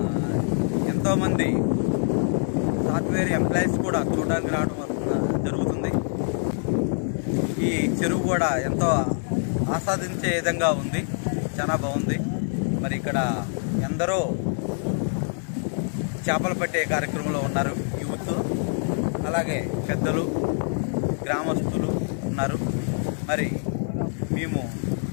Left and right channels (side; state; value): right; silent; digital silence